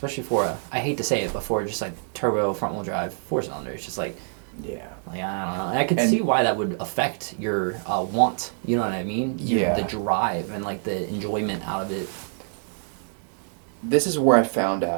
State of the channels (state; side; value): silent; left; digital silence